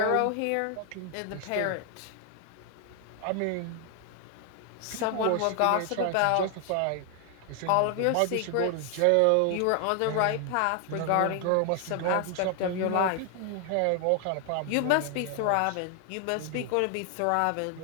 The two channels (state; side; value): different; both; correlation 0.00